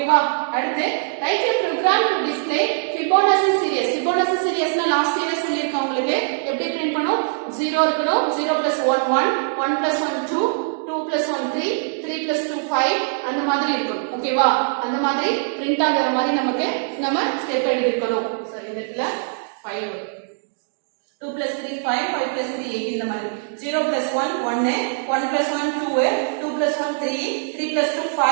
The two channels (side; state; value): left; silent; digital silence